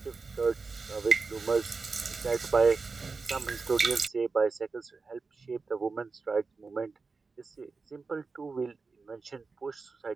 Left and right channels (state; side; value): quieter; left; 4.4 dB